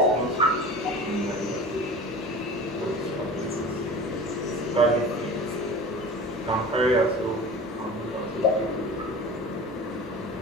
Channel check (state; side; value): normal; both; correlation 0.37